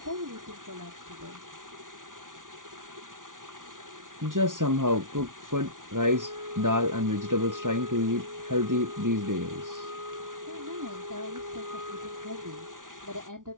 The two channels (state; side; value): late; left; 0.88 ms